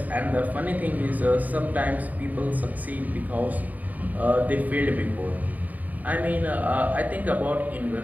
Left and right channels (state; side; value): late; left; 0.077 ms